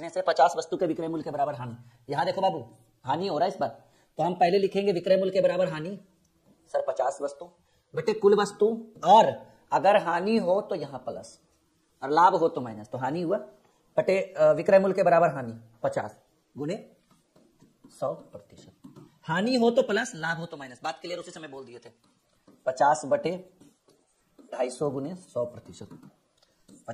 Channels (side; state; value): both; identical; correlation 1.00